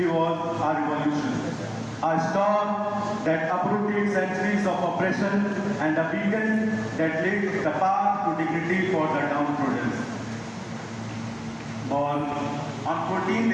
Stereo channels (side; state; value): both; identical; correlation 1.00